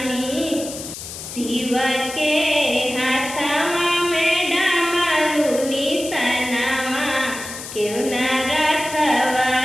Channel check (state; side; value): noise; left; hiss, 10 dB below the sound